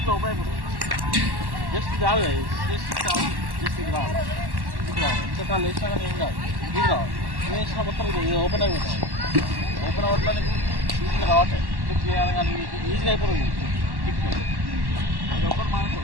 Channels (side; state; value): left; late; 1.1 ms